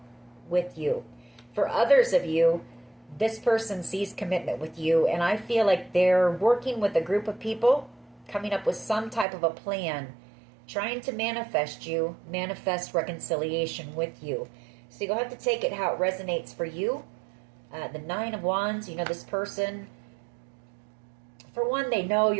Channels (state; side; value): drops out; left; at 9.2 s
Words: with you. For others of you, this person sees commitment with you, and I feel like they're working with a group of people, coming up with some type of a plan, trying to manifest reconciliation with you. So you'll have to take it how it resonates for you. The Nine of Wands, you know, this person, for one, they know